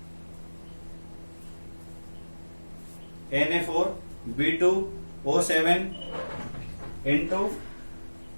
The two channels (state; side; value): inverted; both; correlation -1.00